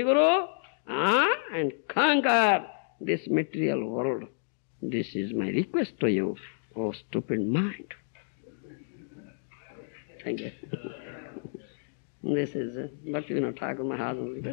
Guru and conquer this material world. This is my request to you, oh stupid mind. Thank you. This is Bhaktivinoda Thakur Mahajan's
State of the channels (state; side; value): silent; right; digital silence